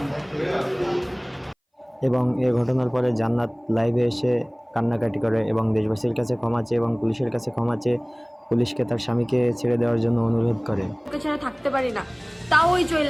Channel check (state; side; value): identical; both; correlation 1.00